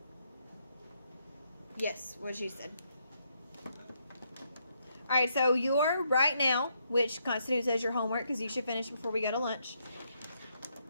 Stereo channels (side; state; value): both; inverted; correlation -0.76